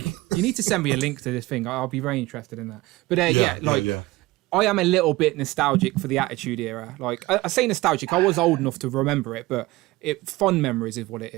you need to send me a link to this thing. I'll be very interested in that. But I am a little bit nostalgic for the Attitude Era. Like, I say nostalgic. I was old enough to remember it, but fond memories is what it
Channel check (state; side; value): quieter; left; 19.8 dB